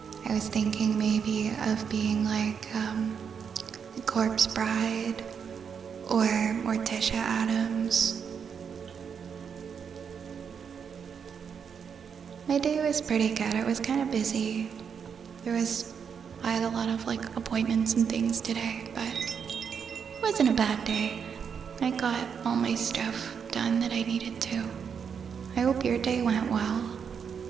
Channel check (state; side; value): quieter; left; 6.9 dB